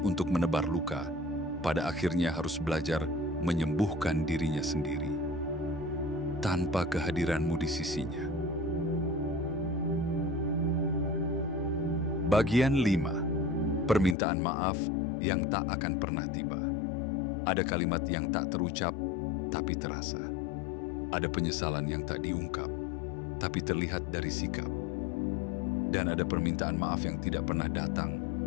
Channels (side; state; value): right; drops out; at 14.2 s